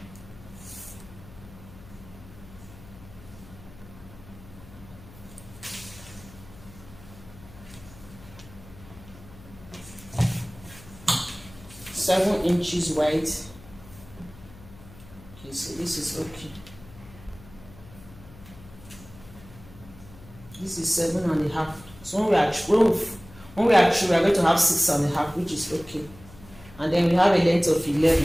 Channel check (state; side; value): noise; left; hum, 19 dB below the sound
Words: 7 inches wide. Okay, so this is okay. This is 7.5. So when we are through, we are going to have 6.5, which is okay. And then we have a length of 11,